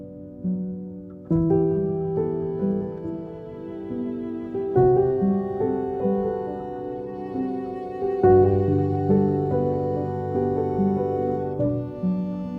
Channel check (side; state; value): both; identical; correlation 1.00